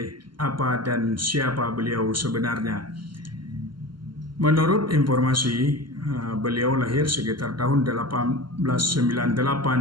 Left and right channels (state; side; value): late; left; 0.72 ms